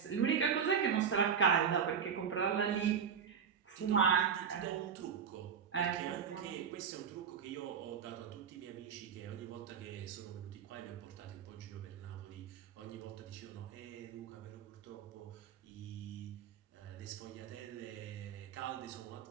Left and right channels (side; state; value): left; quieter; 7.3 dB